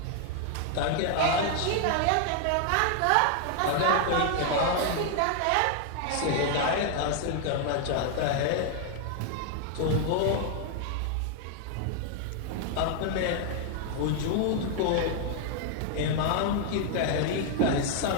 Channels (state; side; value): different; both; correlation 0.00